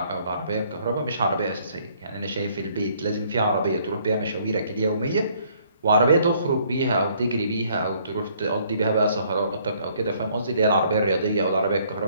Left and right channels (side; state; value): both; inverted; correlation -0.64